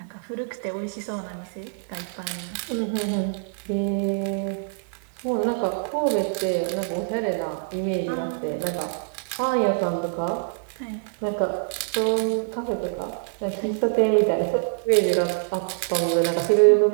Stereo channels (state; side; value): silent; left; digital silence